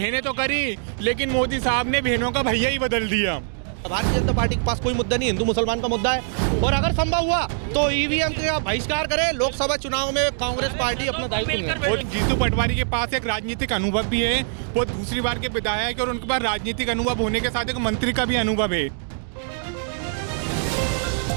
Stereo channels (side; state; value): left; silent; digital silence